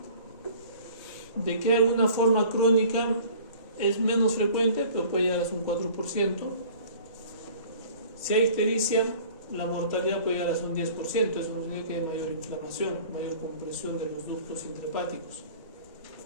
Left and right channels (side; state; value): both; inverted; correlation -0.47